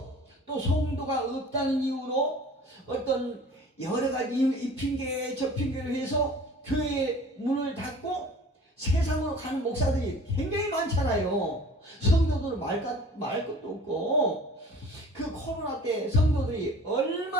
또 성도가 없다는 이유로 어떤 여러 가지 이 핑계 저 핑계를 해서 교회 문을 닫고 세상으로 가는 목사들이 굉장히 많잖아요. 성도들 말 것도 없고 그 코로나 때 성도들이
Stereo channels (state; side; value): normal; both; correlation 0.45